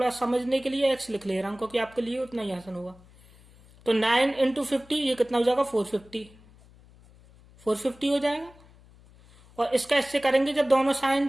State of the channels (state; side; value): noise; left; hum, 25 dB below the sound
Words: समझने के लिए एक्स लिख ले रहा हूं क्योंकि आपके लिए उतना ही आसान होगा। तो 9 × 50 ये कितना हो जाएगा, 450 हो जाएगा। और इसका इससे करेंगे जब दोनों साइन